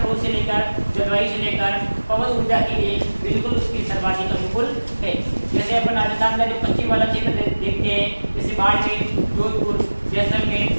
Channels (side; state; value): both; inverted; correlation -1.00